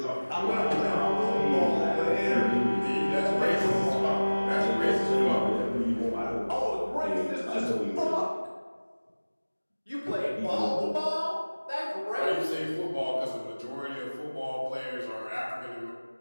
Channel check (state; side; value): inverted; both; correlation -1.00